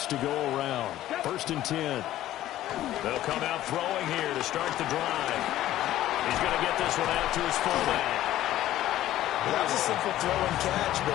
to go around. 1st and 10. They'll come out throwing here to start the drive. He's going to get this one out to his fullback. Well, that was a simple throw and catch,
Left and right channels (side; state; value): right; quieter; 13.8 dB